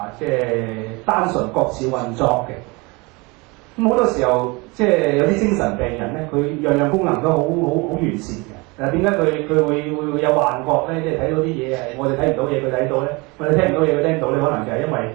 即係單純各自運作嘅。咁好多時候即係有啲精神病人咧，佢樣樣功能都好完善嘅。點解佢會有幻覺咧？即係睇到啲嘢係我哋睇唔到嘢，佢睇到咧；我哋聽唔到嘢，佢聽到咧。可能就係因為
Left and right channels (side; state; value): left; quieter; 26.5 dB